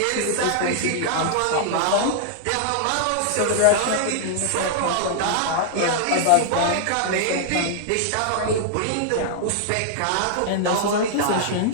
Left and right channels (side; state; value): both; different; correlation -0.01